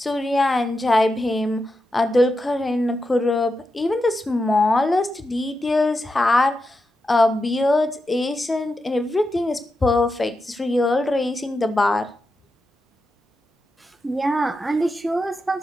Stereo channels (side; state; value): both; normal; correlation 0.88